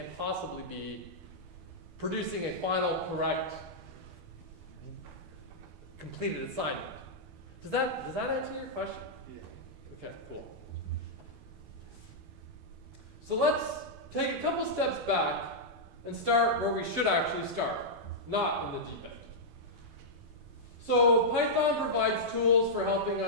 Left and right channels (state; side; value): late; left; 12 ms